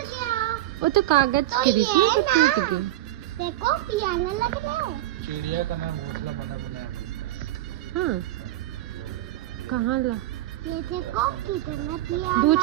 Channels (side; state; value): left; quieter; 15.3 dB